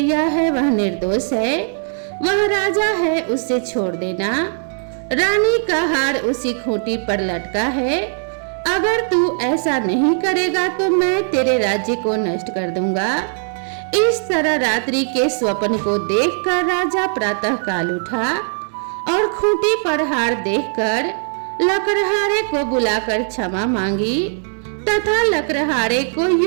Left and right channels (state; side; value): silent; left; 62 dB below the other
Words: है वह निर्दोष है, वह राजा है, उसे छोड़ देना। रानी का हार उसी खूंटी पर लटका है, अगर तू ऐसा नहीं करेगा तो मैं तेरे राज्य को नष्ट कर दूंगा। इस तरह रात्रि के स्वप्न को देखकर राजा प्रातः काल उठा और खूंटी पर हार देखकर लकड़हारे को बुलाकर क्षमा मांगी तथा लकड़हारे को